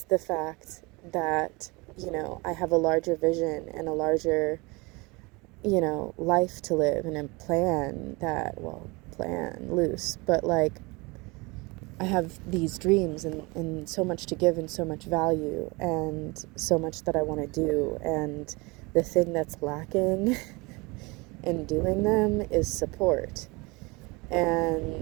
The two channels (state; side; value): quieter; left; 25.9 dB